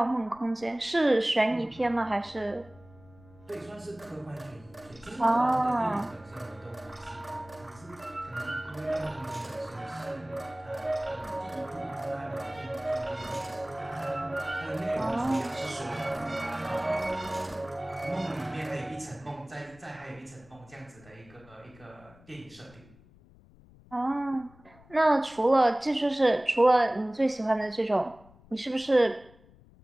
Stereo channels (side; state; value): left; noise; rumble, 25 dB below the sound